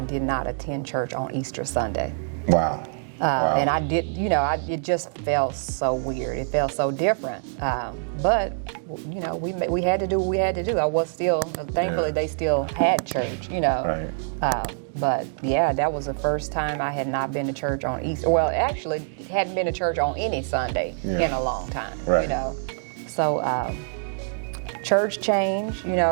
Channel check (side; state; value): left; silent; digital silence